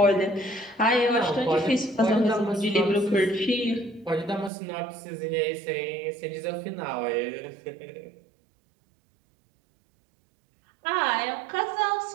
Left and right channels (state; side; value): drops out; left; at 4.5 s